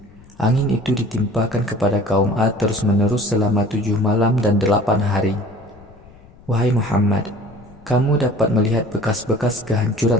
Angin itu ditimpakan kepada kaum Ad terus-menerus selama 7 malam dan 8 hari. Wahai Muhammad, kamu dapat melihat bekas-bekas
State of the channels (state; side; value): noise; left; rumble, 24 dB below the sound